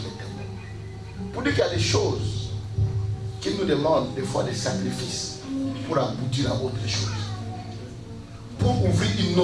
était mort. Pour dire qu'il y a des choses qui nous demandent des fois des sacrifices pour aboutir à autre chose. Pour ouvrir une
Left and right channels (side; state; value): both; identical; correlation 1.00